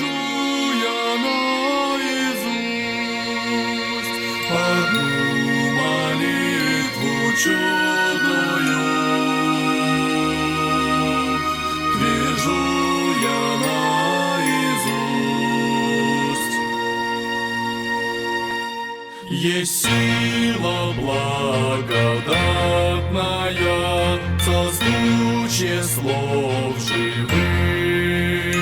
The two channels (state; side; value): identical; both; correlation 1.00